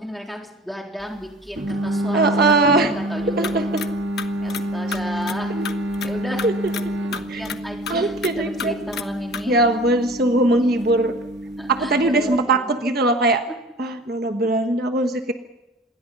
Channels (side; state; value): both; normal; correlation 0.42